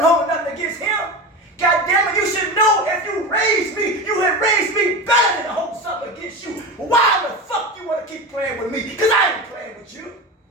holding nothing against him. God damn it, you should know if you raised me, you had raised me better than to hold something against you. Why the fuck you want to keep playing with me? Because I ain't playing with you.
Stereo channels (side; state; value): both; normal; correlation 0.24